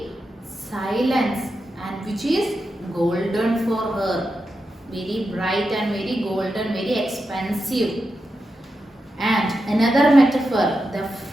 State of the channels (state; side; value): normal; both; correlation 0.88